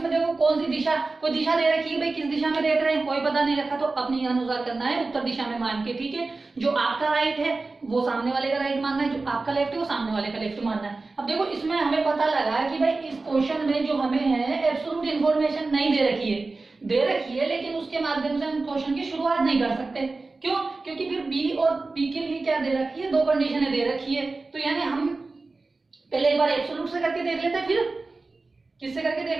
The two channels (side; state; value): left; quieter; 3.6 dB